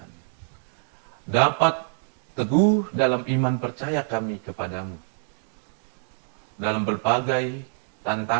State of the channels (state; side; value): silent; left; 61 dB below the other